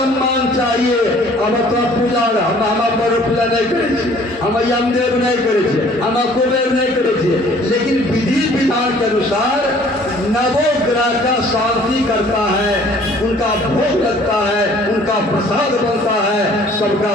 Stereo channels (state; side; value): normal; both; correlation 0.55